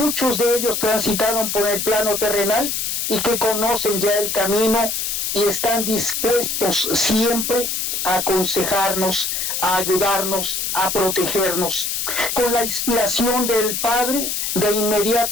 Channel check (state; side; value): noise; left; hiss, 1 dB below the sound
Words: de ellos transitaron por el plano terrenal y que conocen ya el camino y están dispuestos siempre a aconsejarnos, a ayudarnos, a protegernos. Con la inspiración del Padre, de